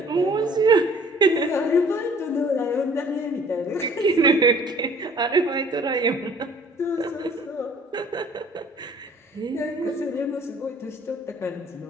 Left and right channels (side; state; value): both; normal; correlation 0.54